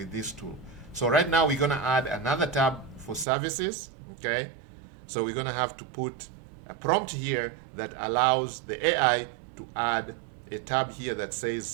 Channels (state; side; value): drops out; left; at 3.2 s